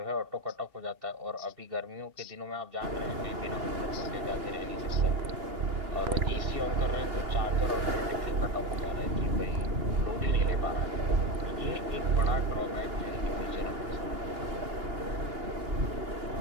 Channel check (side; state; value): left; late; 2.8 ms